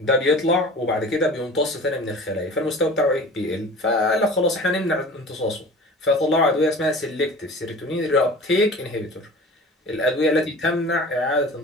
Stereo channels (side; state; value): both; normal; correlation 0.40